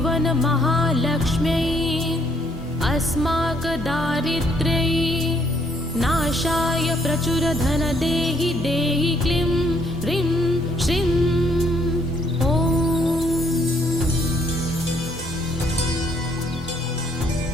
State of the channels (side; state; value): both; normal; correlation 0.68